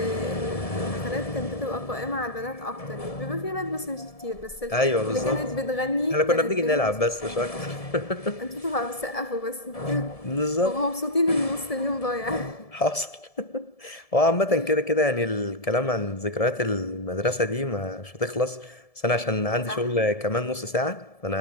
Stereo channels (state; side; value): late; right; 1.7 ms